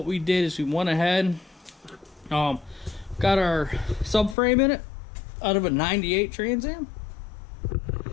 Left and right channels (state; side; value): drops out; right; at 4.4 s